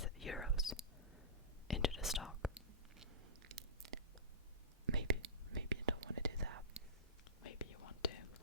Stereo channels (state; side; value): normal; both; correlation -0.19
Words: euros into the stock. Maybe you don't want to do that. Maybe you want to.